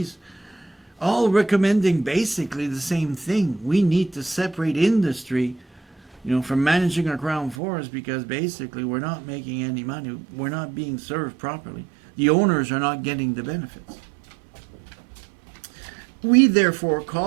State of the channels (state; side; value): drops out; left; at 7.6 s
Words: all recommending basically the same thing. We need to separate industry, from managing our crown forest, because basically we're not making any money. We're not being served properly. The owners are not getting the benefits. We therefore